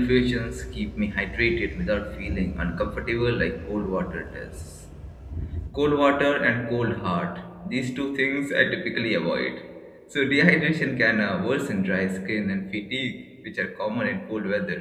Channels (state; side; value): identical; both; correlation 1.00